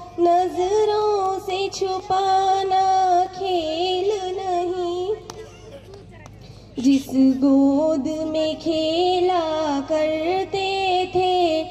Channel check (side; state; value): both; identical; correlation 1.00